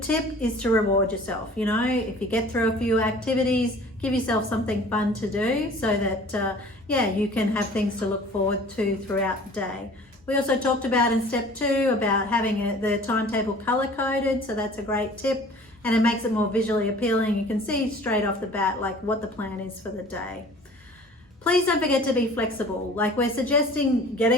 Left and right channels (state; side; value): normal; both; correlation 0.48